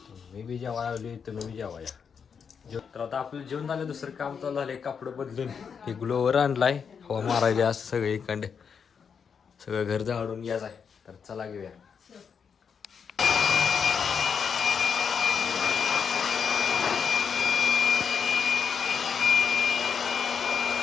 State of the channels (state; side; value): quieter; right; 6.6 dB